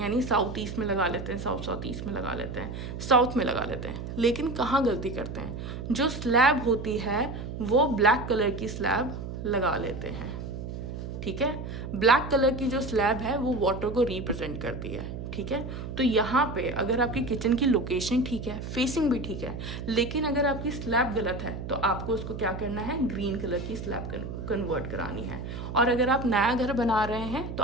यानी साउथ ईस्ट में लगा लेते हैं, साउथ ईस्ट में लगा लेते हैं, साउथ में लगा लेते हैं। लेकिन कहाँ गलती करते हैं, जो स्लैब होती है वो ब्लैक कलर की स्लैब लगा लेते हैं, ठीक है। ब्लैक कलर की जो स्लैब है वो वाटर को रिप्रेजेंट करती है, ठीक है। तो यहाँ पे अगर आपकी किचन की लोकेशन ठीक है, फेसिंग भी ठीक है, लेकिन अगर आपकी स्लैब गलत है तो आपको उसको क्या करना है, ग्रीन कलर की स्लैब कन्वर्ट करानी है। और अगर आप नया घर बना रहे हैं तो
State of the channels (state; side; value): noise; right; hum, 7 dB below the sound